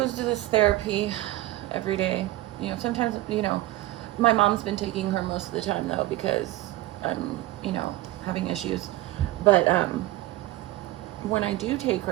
to this therapy every day. You know, sometimes, you know, my mom's been taking her most of the time though because I'm, you know, having issues. But when I do take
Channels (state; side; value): quieter; left; 17.1 dB